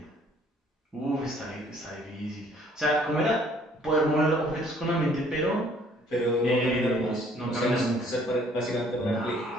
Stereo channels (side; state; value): both; normal; correlation 0.60